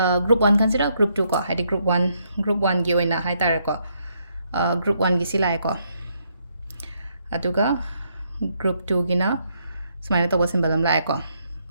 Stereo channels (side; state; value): both; inverted; correlation -0.75